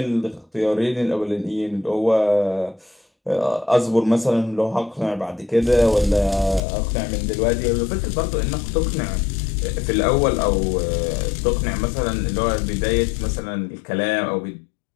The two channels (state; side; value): drops out; right; at 6.6 s